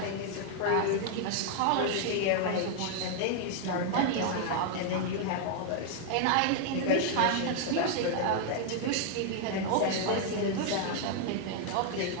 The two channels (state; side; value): different; both; correlation 0.00